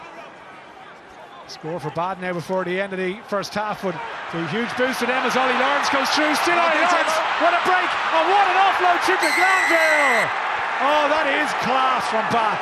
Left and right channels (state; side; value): identical; both; correlation 1.00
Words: Score for Bath now before the end of the first half, but a huge boost to them as Ollie Lawrence goes through. Still Ollie Lawrence. What a break, and what an offload to Glanville. Oh, that is class from Bath.